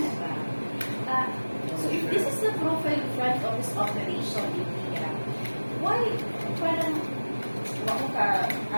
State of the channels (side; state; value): both; inverted; correlation -1.00